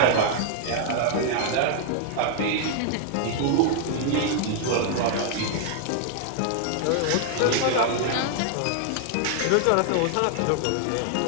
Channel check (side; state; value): both; different; correlation 0.00